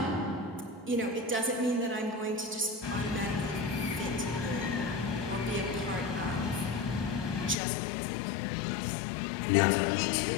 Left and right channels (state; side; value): drops out; right; at 7.6 s